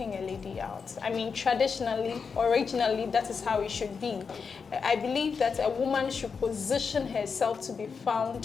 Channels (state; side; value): quieter; right; 5.6 dB